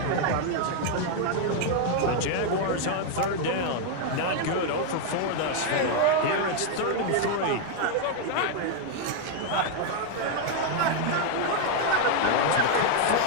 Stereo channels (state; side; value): different; both; correlation 0.00